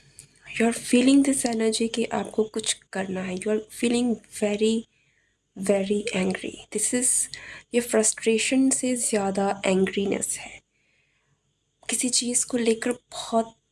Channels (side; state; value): both; identical; correlation 1.00